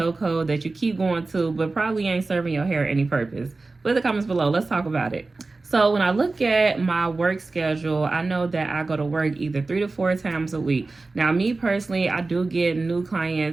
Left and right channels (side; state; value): left; quieter; 3.5 dB